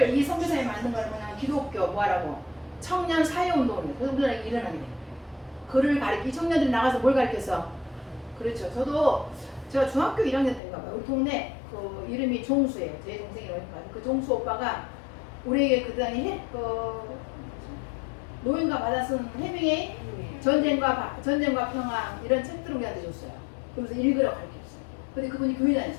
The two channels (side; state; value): right; drops out; at 10.6 s